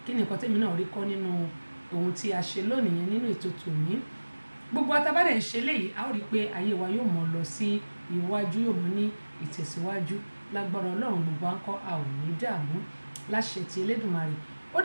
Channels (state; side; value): inverted; both; correlation -1.00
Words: kí ni nǹkan tẹ́mi náà rí kọ́ nínú ohun tí a ṣe lónìí yẹn nínú ètò tòní gbogbo atabádẹ̀ ń ṣe léyìí a ó rí i pé ayé wa yóò mọ̀ lọ sí iwájú yóò mú ní ìtẹ̀síwájú lágbára Ọlọ́run gbogbo à ń kọ́ a ò ní dààmú láṣẹ ti Elédùmarè ó